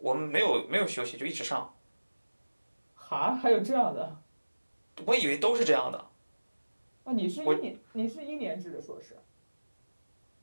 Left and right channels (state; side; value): inverted; both; correlation -1.00